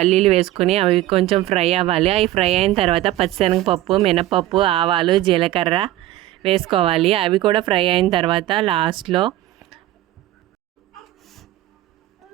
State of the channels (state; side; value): quieter; left; 14.8 dB